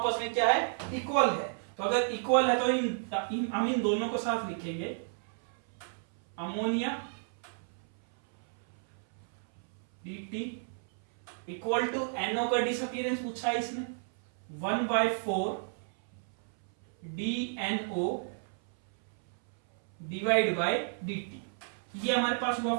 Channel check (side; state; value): left; silent; 56 dB below the other